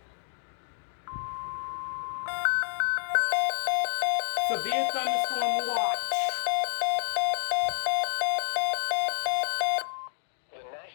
Severe thunderstorm watch. The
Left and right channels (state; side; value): silent; right; digital silence